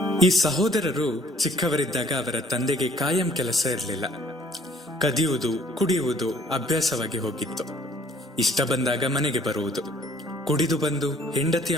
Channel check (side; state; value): both; normal; correlation 0.59